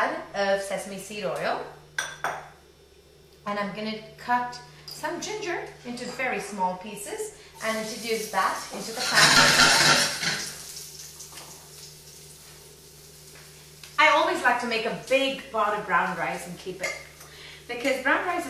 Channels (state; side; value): identical; both; correlation 1.00